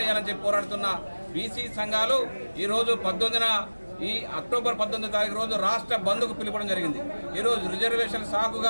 ఇవ్వాలని చెప్పి పోరాడుతున్న బీసీ సంఘాలు ఈరోజు ఈ అక్టోబర్ 19వ తారీఖు రోజు రాష్ట్ర బంద్కు పిలుపడం జరిగింది. ఈరోజు రిజర్వేషన్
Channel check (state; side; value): inverted; both; correlation -1.00